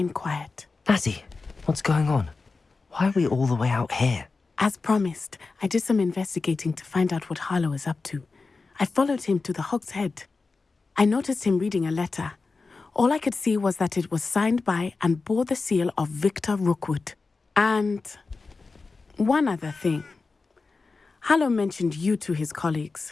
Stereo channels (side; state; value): right; quieter; 4.1 dB